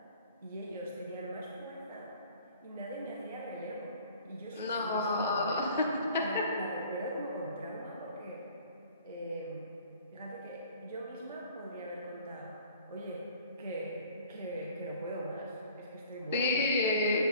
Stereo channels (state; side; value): inverted; both; correlation -0.51